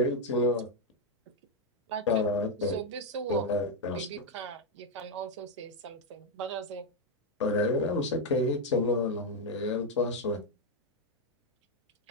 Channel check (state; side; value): normal; both; correlation 0.02